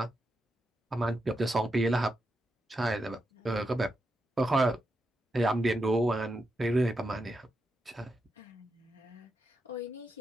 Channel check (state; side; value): normal; both; correlation 0.86